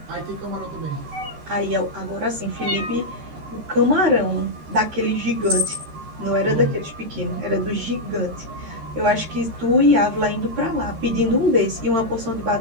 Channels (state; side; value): late; left; 13 ms